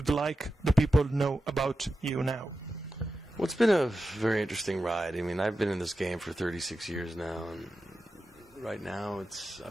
like the people to know about you now? Well, it's been a very interesting ride. I mean, I've been in this game for 36 years now, and right now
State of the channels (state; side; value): normal; both; correlation 0.91